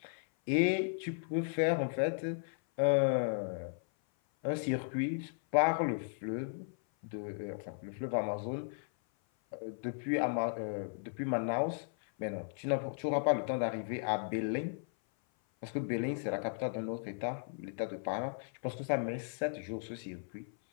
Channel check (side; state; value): right; silent; 54 dB below the other